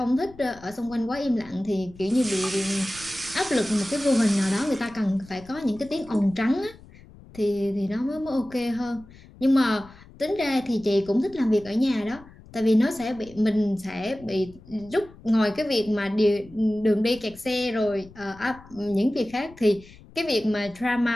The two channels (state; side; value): noise; left; rumble, 22 dB below the sound